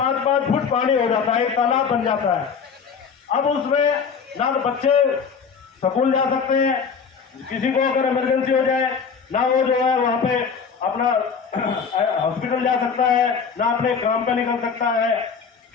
फुट पानी हो जाता है, एक तालाब बन जाता है। अब उसमें ना तो बच्चे स्कूल जा सकते हैं, किसी को अगर इमरजेंसी हो जाए ना वो जो है वहाँ पे अपना हॉस्पिटल जा सकता है, ना अपने काम पे निकल सकता है।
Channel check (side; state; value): right; quieter; 6.1 dB